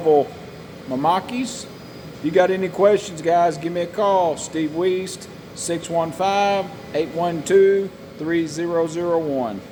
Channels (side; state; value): both; identical; correlation 1.00